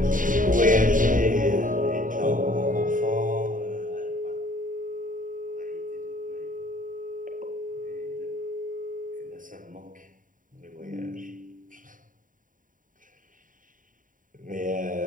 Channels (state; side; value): late; left; 0.39 ms